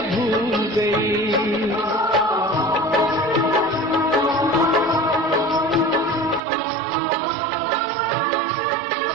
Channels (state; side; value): drops out; left; at 6.4 s